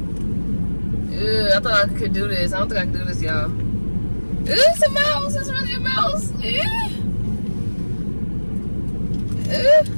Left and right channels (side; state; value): both; inverted; correlation -1.00